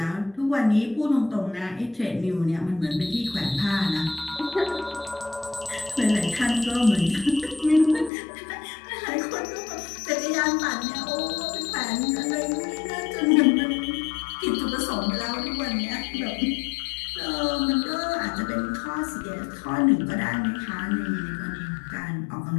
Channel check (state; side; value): drops out; right; at 8.1 s